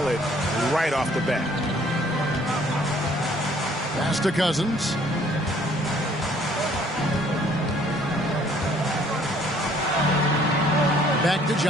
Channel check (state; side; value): normal; both; correlation 0.60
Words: right off the bat. Pass to Cousins. Back to